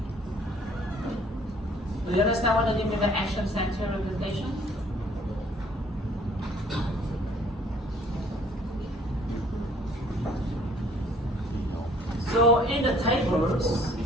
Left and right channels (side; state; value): both; normal; correlation 0.58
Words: Do you understand what I mean by action center representation? So in the tables,